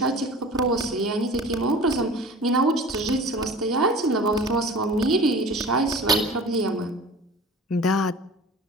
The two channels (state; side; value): normal; both; correlation 0.40